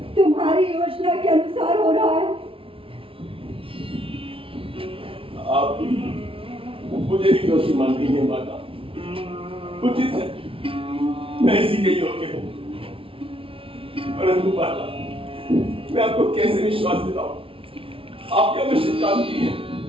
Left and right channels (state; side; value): late; left; 0.26 ms